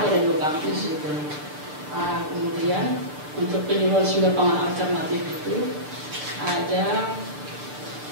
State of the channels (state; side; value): late; left; 6.7 ms